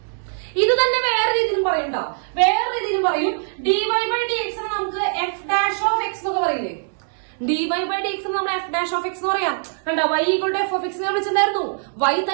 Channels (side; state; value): left; silent; digital silence